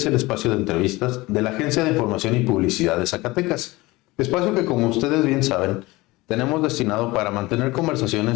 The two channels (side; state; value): right; quieter; 20.9 dB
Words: el espacio de entrevistas de la Agencia de Información y Publicidad de Zacatecas. Espacio que, como ustedes bien saben, tenemos destinado para mantener